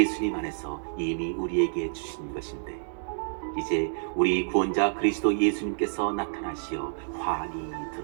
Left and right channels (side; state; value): left; silent; digital silence